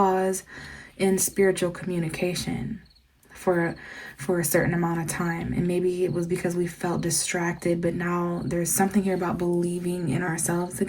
in spiritual communication for a certain amount of time. And maybe it was because we felt distracted, but now there's something here about believing in ourselves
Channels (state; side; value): identical; both; correlation 1.00